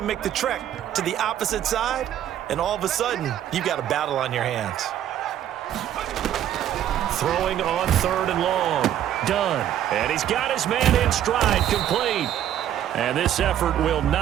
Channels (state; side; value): quieter; left; 11.1 dB